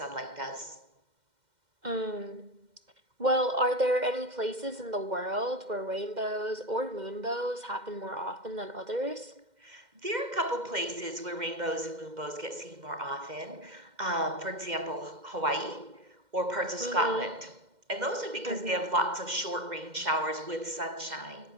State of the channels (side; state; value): left; late; 2.1 ms